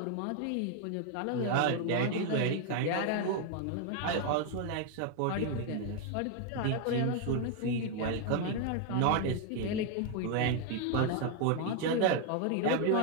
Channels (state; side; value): different; both; correlation 0.01